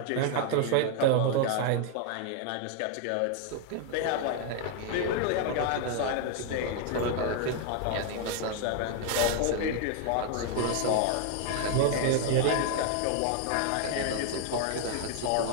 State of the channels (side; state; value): both; different; correlation 0.00